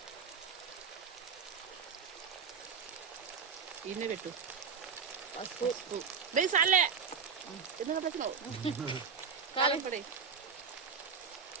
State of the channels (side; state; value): left; quieter; 6.1 dB